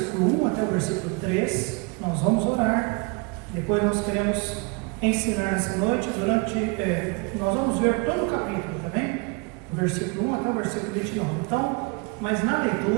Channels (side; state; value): left; quieter; 30.8 dB